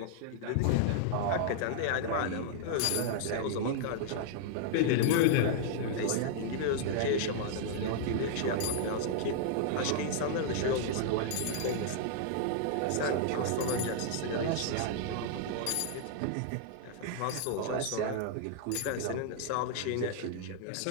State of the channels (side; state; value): both; different; correlation -0.01